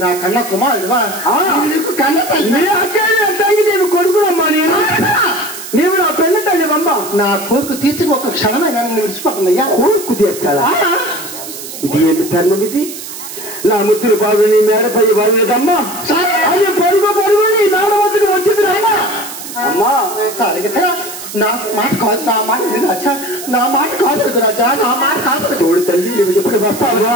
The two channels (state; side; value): noise; right; hiss, 11 dB below the sound